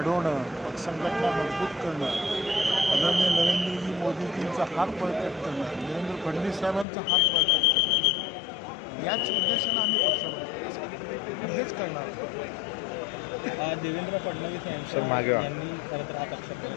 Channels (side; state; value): right; drops out; at 6.9 s